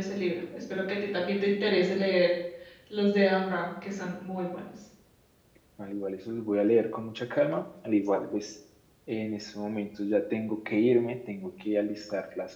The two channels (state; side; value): identical; both; correlation 1.00